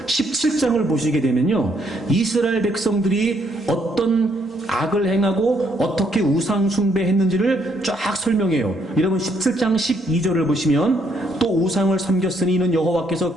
17장을 보시게 되면요, 이스라엘 백성들이 어떤 악을 행하고 어떻게 우상 숭배했는지를 쫙 설명해요. 여러분, 17장 12절을 보시면 또 우상을 섬겼으니 이는 여호와께서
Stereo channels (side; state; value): both; normal; correlation 0.71